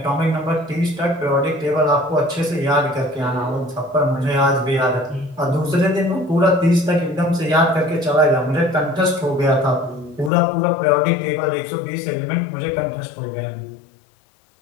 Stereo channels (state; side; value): drops out; right; at 10.3 s